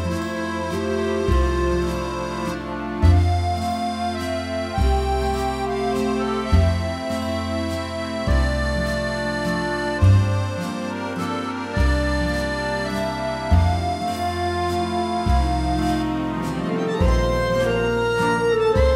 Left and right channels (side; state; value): both; identical; correlation 1.00